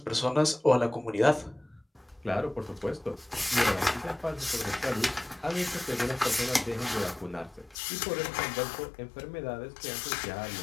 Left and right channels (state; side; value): drops out; right; at 7.8 s